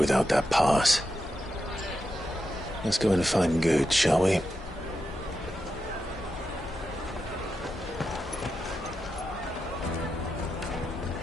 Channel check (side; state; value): both; normal; correlation 0.87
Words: that pass. Let's go and find Good, shall we?